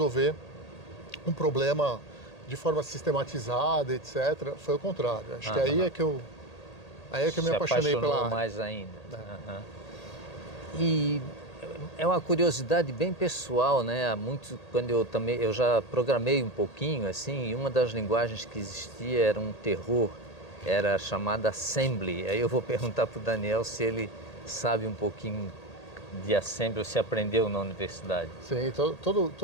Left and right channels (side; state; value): right; late; 1.8 ms